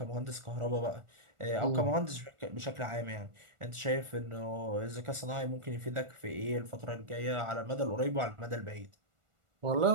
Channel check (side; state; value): left; late; 1.4 ms